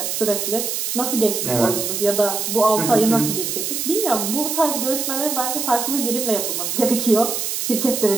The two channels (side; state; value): right; noise; hiss, 2 dB below the sound